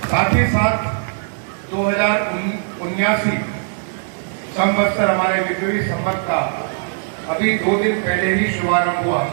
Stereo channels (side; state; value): left; silent; digital silence